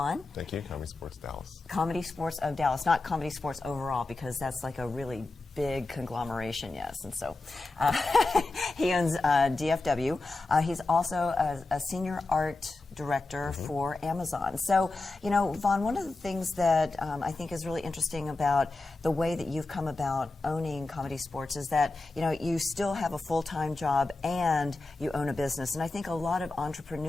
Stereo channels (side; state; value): right; quieter; 3.3 dB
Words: Thank you. Comedy Sports Dallas. Comedy Sports of Dallas, not Comedy Sports overall, because that's like a really big conglomeration, yes. And so he owns DFW. He's also a senior art director for Amazon. So, Vaughn, one of the things that I think is really interesting about the way that you've come about owning Comedy Sports is that, you still have a full-time job and you own a business. And I think a lot of